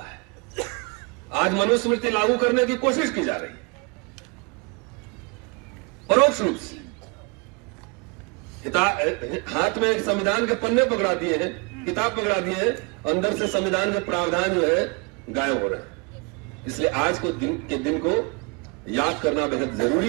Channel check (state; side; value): quieter; left; 32.2 dB